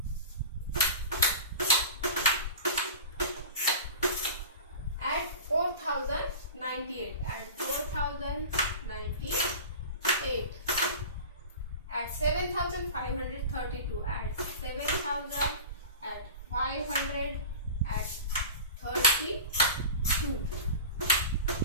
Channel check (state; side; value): inverted; both; correlation -0.33